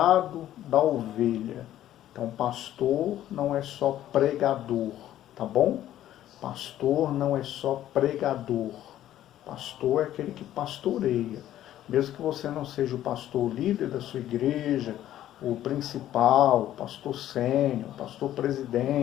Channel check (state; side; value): quieter; right; 12.6 dB